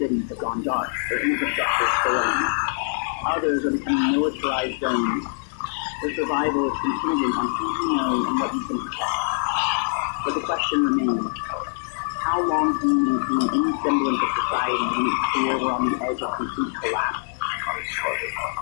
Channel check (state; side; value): silent; right; digital silence